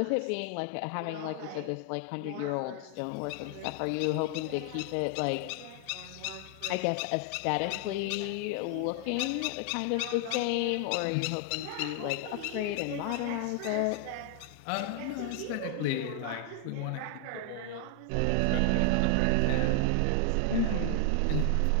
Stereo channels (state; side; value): different; both; correlation 0.00